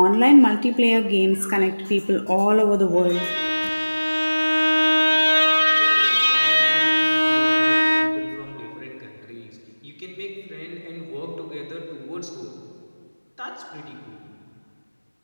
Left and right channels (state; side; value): inverted; both; correlation -1.00